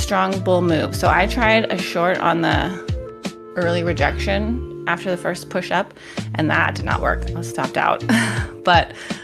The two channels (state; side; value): identical; both; correlation 1.00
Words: bull move. So I tried a short on the early rejection after the first push up, and that did not work. I was stopped out. But